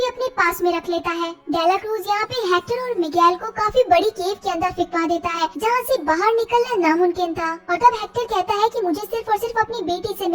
अपने पास में रख लेता है। डेला क्रूज यहाँ पे हेक्टर और मिगेल को काफी बड़ी केव के अंदर फिकवा देता है जहाँ से बाहर निकलना नामुमकिन था और तब हेक्टर कहता है कि मुझे सिर्फ और सिर्फ अपनी बेटी से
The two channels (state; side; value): identical; both; correlation 1.00